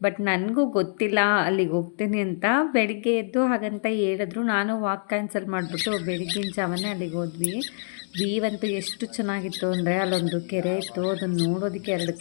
ಬಟ್ ನನಗೂ ಗೊತ್ತಿಲ್ಲ ಅಲ್ಲಿಗೆ ಹೋಗ್ತೀನಿ ಅಂತ. ಬೆಳಿಗ್ಗೆ ಎದ್ದು ಹಾಗಂತ ಹೇಳಿದ್ರು. ನಾನು ವಾಕ್ ಕ್ಯಾನ್ಸಲ್ ಮಾಡಿಬಿಟ್ಟು ಬೆಳಗ್ಗಿನ ಜಾವನೇ ಅಲ್ಲಿಗೆ ಹೋದ್ವಿ. ಅಂತೂ ಎಷ್ಟು ಚೆನ್ನಾಗಿತ್ತು ಅಂದರೆ, ಅಲ್ಲೊಂದು ಕೆರೆ ಇತ್ತು, ಅದನ್ನು ನೋಡೋದಕ್ಕೆ ಎರಡು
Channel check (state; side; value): silent; right; digital silence